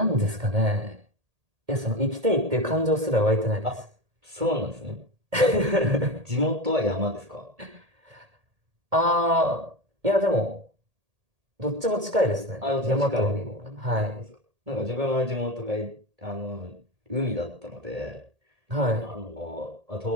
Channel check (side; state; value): left; late; 1.8 ms